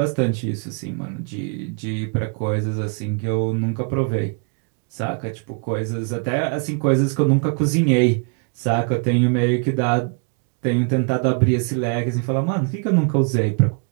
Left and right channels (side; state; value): left; quieter; 38.1 dB